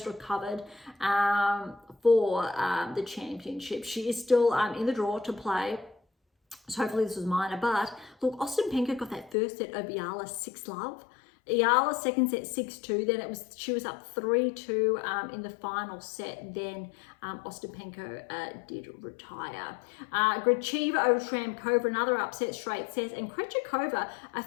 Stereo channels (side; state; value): right; drops out; at 9.3 s